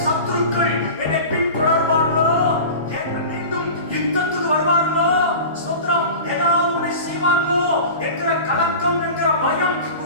சத்துருக்கள் என்னை பின்தொடர்வார்களோ, மீண்டும் யுத்தத்துக்கு வருவார்களோ, ஸ்தோத்திரம், ஏதாவது ஒன்றை செய்வார்களோ என்கிற கலக்கம், என்கிற பயம்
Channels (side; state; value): both; inverted; correlation -0.34